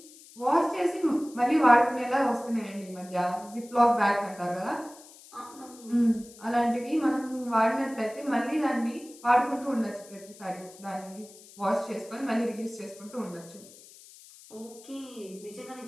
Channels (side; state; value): left; noise; hiss, 21 dB below the sound